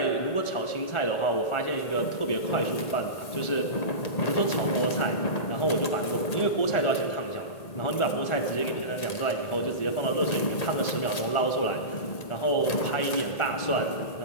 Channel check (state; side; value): late; right; 1.8 ms